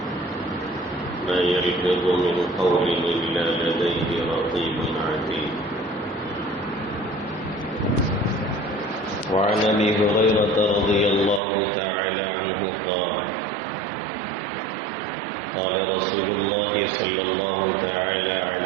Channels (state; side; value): drops out; left; at 11.4 s